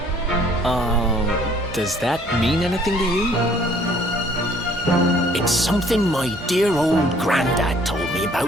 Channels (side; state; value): both; normal; correlation 0.59